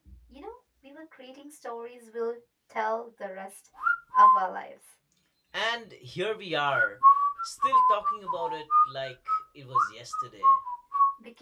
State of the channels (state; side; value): identical; both; correlation 1.00